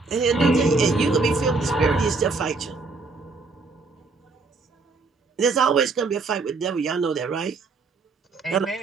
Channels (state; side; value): quieter; left; 4.0 dB